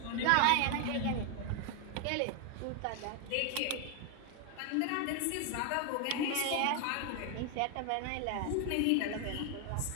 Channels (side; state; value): both; different; correlation 0.01